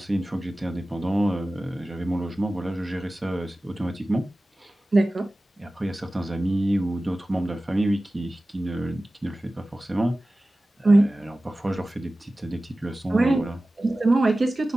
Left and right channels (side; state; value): both; normal; correlation 0.96